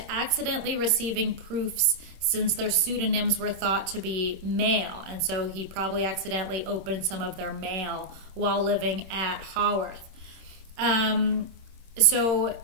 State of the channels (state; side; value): late; left; 27 ms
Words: accidentally receiving proofs, since their pseudonyms were thought to be male, and so he probably accidentally opened some of their mail while living at Haworth. I